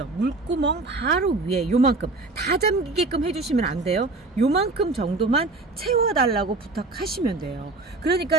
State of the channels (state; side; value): quieter; left; 3.4 dB